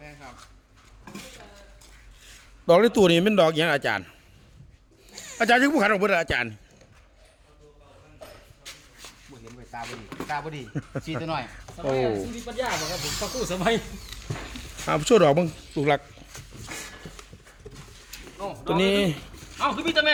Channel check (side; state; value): both; identical; correlation 1.00